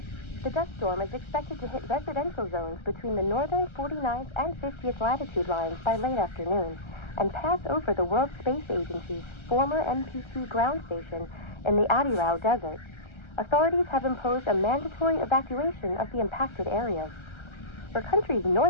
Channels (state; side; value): late; right; 1.3 ms